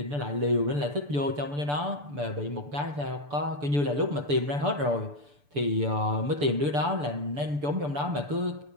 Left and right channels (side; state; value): left; late; 6.9 ms